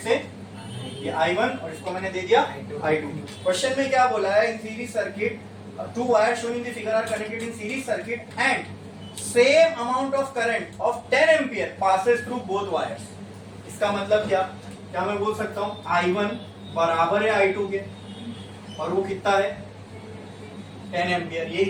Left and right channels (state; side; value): identical; both; correlation 1.00